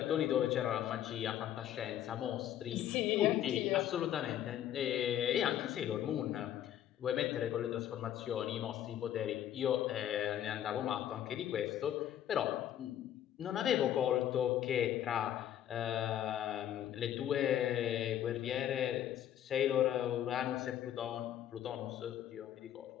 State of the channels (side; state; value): right; quieter; 11.1 dB